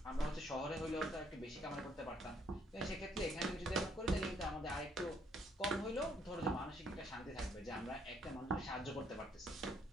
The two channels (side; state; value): both; normal; correlation 0.68